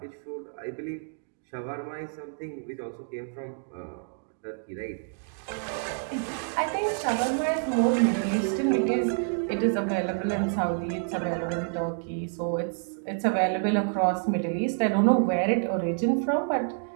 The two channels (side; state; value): left; silent; 59 dB below the other